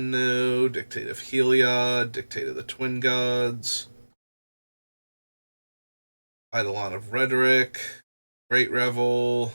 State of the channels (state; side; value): inverted; both; correlation -1.00